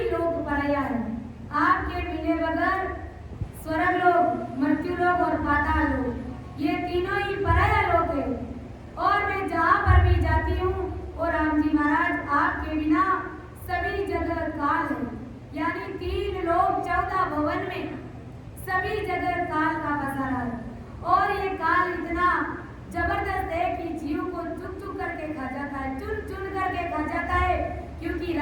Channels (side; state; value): both; identical; correlation 1.00